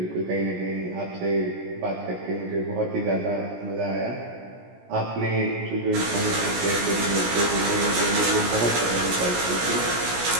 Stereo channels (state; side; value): late; left; 17 ms